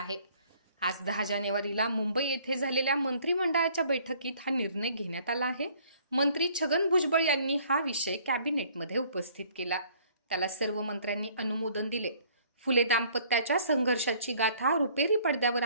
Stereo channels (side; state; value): both; inverted; correlation -0.58